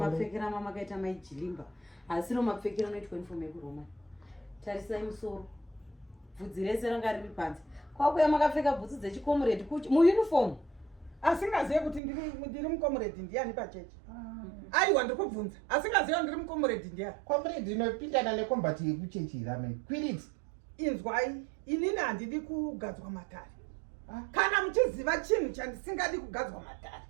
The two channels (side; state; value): left; drops out; at 12.0 s